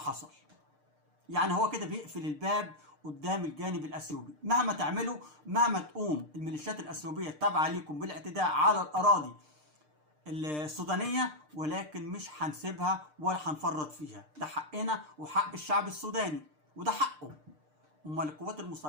يعني هو كده بيقفل الباب قدام الجانب الاثيوبي، مهما تعملوا، مهما تقوم الميليشيات الاثيوبيه التابعه ليكم بالاعتداء على الاراضي السودانيه، ولكن مش هنسيبها ولا هنفرط فيها. ده حقنا وحق الشعب السوداني وده حقه. امال القوات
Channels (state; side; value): late; left; 6.6 ms